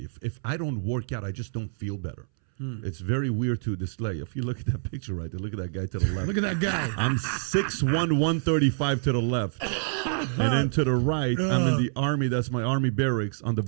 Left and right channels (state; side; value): silent; left; 60 dB below the other